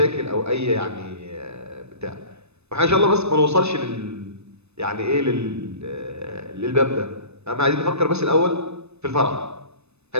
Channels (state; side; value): late; left; 0.80 ms